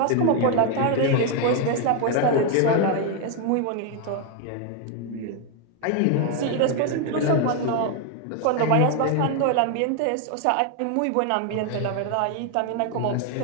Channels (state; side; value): different; both; correlation 0.01